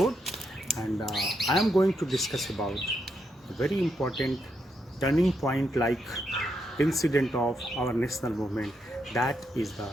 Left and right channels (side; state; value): both; normal; correlation 0.80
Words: and I am going to discuss about a very important turning point like incident of our national movement, that is the